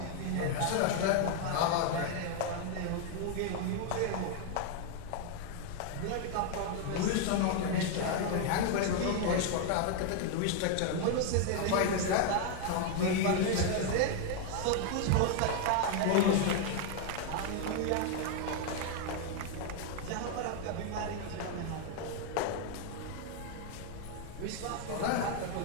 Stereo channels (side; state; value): both; different; correlation 0.00